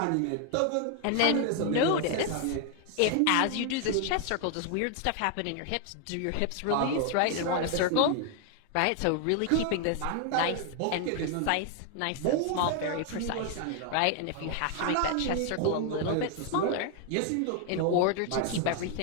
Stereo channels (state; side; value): different; both; correlation 0.00